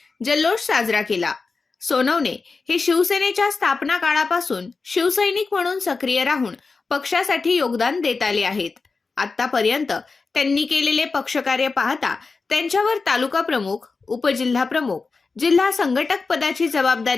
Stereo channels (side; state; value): right; quieter; 4.3 dB